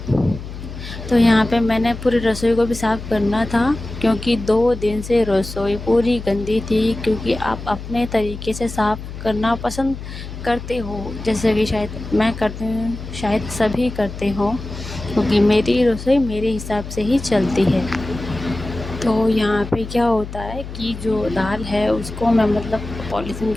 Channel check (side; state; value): left; noise; hum, 10 dB below the sound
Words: तो यहाँ पे मैंने पूरी रसोई को भी साफ़ करना था, क्योंकि 2 दिन से रसोई पूरी गंदी थी, क्योंकि आप अपने तरीके से साफ़ करना पसंद करते हो, जैसे कि शायद मैं करती हूँ, शायद सभी करते हों, क्योंकि मेरी रसोई मेरे हिसाब से ही चलती है। तो यहाँ पे क्या होता है कि जो दाल है उसको मैं मतलब पॉलीथीन